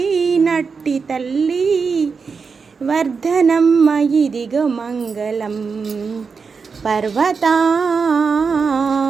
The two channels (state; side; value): quieter; left; 5.2 dB